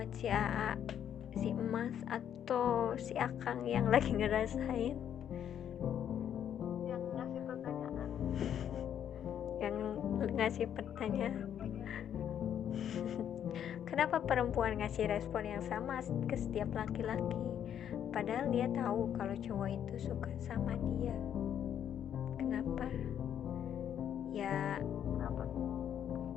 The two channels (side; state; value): right; quieter; 9.5 dB